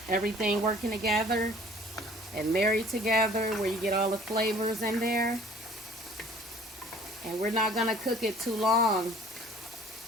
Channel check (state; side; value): normal; both; correlation 0.52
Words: everything working together and married together, where you get all the flavors in there. And we're not gonna cook it too long,